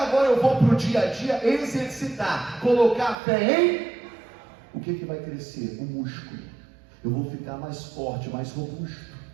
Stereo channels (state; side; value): drops out; left; at 3.2 s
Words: eu vou para o dia a dia exercitar, colocar a fé em... O que vai crescer? O músculo. Eu vou ficar mais forte, mais robusto.